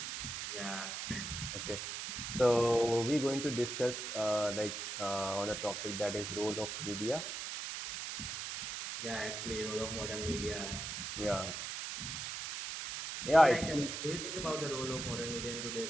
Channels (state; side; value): noise; right; hiss, 5 dB below the sound